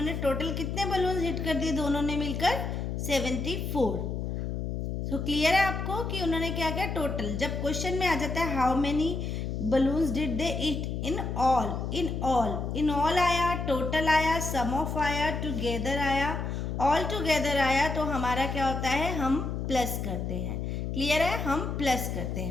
टोटल कितने बलून्स हिट कर दिए दोनों ने मिलकर? 74। सो क्लियर है आपको कि उन्होंने क्या किया? टोटल। जब क्वेश्चन में आ जाता है how many balloons did they eat in all, in all आया, टोटल आया, सम ऑफ आया, टुगेदर आया, ऑल टुगेदर आया, तो हमारा क्या होता है? हम प्लस करते हैं। क्लियर है? हम प्लस करते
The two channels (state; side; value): noise; left; hum, 3 dB below the sound